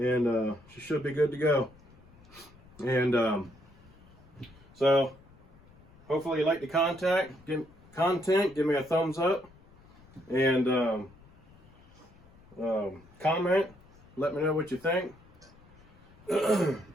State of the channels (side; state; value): left; noise; rumble, 25 dB below the sound